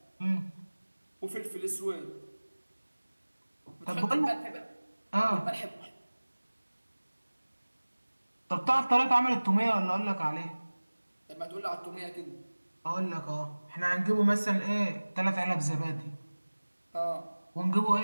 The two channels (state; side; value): inverted; both; correlation -1.00